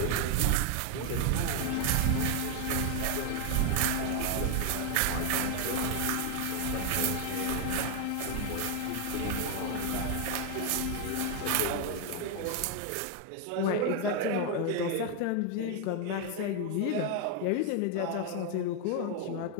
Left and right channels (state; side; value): different; both; correlation 0.01